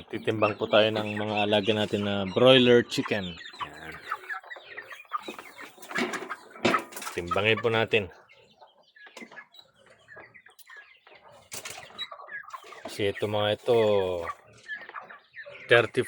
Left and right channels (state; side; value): identical; both; correlation 1.00